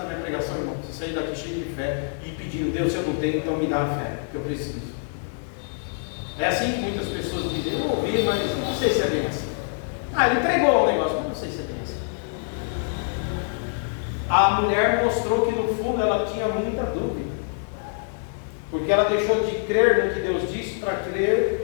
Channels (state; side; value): silent; right; digital silence